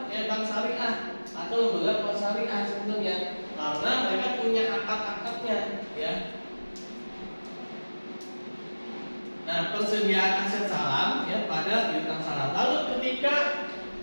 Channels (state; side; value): inverted; both; correlation -1.00